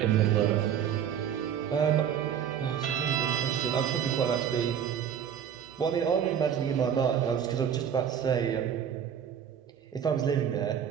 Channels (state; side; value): quieter; left; 8.7 dB